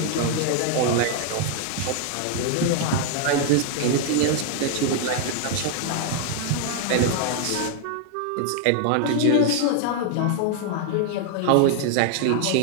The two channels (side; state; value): both; different; correlation 0.00